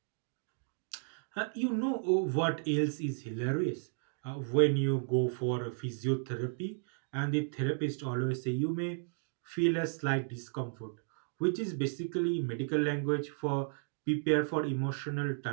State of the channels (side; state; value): left; silent; digital silence